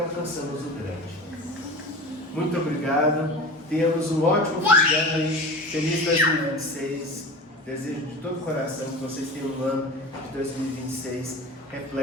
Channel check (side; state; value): both; normal; correlation 0.33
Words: o grande. Muito obrigado, tenhamos um ótimo fim de ano aí, feliz 2026, desejo de todo o coração que vocês tenham um ano de 2026